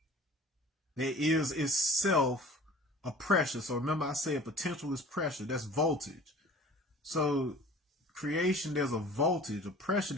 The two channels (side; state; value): both; normal; correlation 0.45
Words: that is itself a pressure. So remember, I say a potential is pressure. That's voltage. So creation, there's a voltage, a pressure